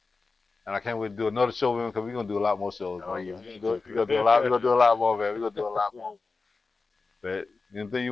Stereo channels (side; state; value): right; quieter; 4.1 dB